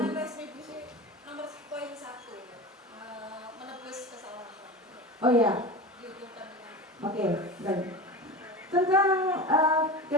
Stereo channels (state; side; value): normal; both; correlation 0.29